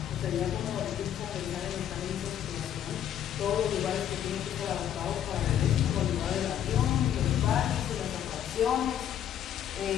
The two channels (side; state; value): right; quieter; 10.2 dB